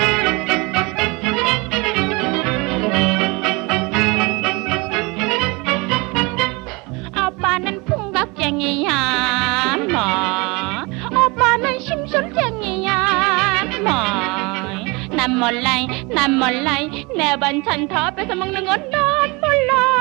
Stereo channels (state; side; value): quieter; left; 26.8 dB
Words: 오빠는 풍각쟁이야 뭐 오빠는 심술쟁이야 뭐 난 몰라 내 반찬 다 뺏어 먹는 건 난 몰라